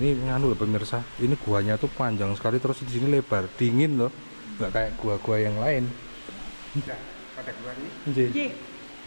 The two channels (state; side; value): inverted; both; correlation -1.00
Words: nganu loh pemirsa. Ini guanya tuh panjang sekali terus di sini lebar, dingin loh. Nggak kayak gua-gua yang lain. Sudah pada keluar nih. Nggih. J.